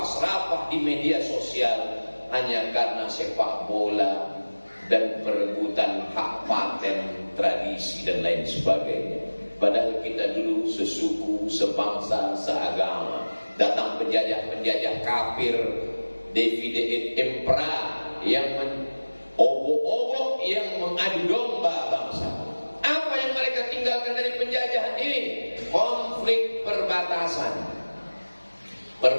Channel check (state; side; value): inverted; both; correlation -1.00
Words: serapah di media sosial hanya karena sepak bola dan perebutan hak paten, tradisi dan lain sebagainya. Padahal kita dulu sesuku, sebangsa, seagama. Datang penjajah-penjajah kafir, Davide et Impera yang obok-obok, yang mengadu domba bangsa. Apa yang mereka tinggalkan dari penjajahan ini? Konflik perbatasan.